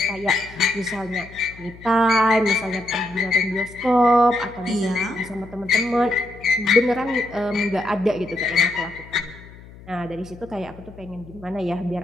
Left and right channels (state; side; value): noise; left; hum, 19 dB below the sound